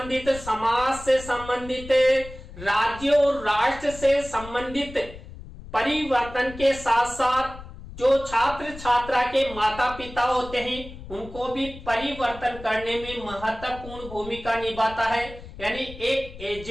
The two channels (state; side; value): noise; left; rumble, 15 dB below the sound